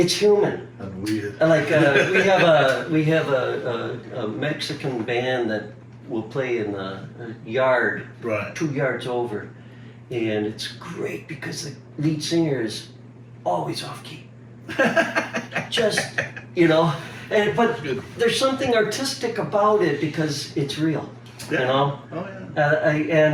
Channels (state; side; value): identical; both; correlation 1.00